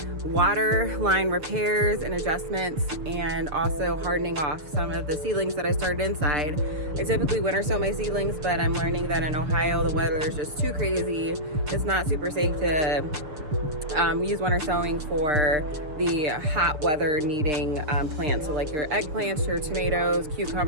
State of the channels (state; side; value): late; left; 6.8 ms